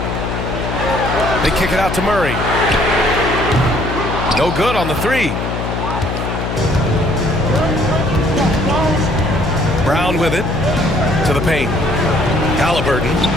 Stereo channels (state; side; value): noise; left; hum, 3 dB below the sound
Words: They kick it out to Murray. No good on the 3. Brown with it to the paint. Halliburton.